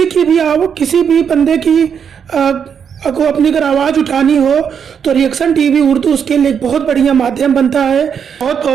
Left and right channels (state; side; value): quieter; left; 7.4 dB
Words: भी बंदे की को अपनी अगर आवाज़ उठानी हो तो रिएक्शन टीवी उर्दू उसके लिए एक बहुत बढ़िया माध्यम बनता है। बहुत